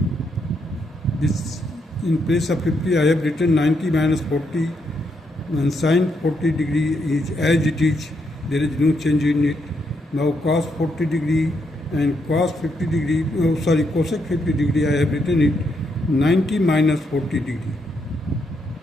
This in place of 50 I have written 90 minus 40, and sine 40 degree is as it is, there is no change in it. Now cos 40 degree and cos 50 degree, cosec 50 degree, I have written it 90 minus 40 degree.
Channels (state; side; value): normal; both; correlation 0.78